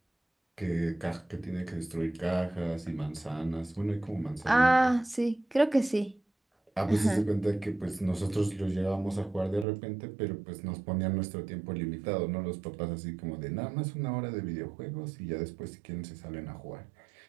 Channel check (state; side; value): drops out; left; at 9.7 s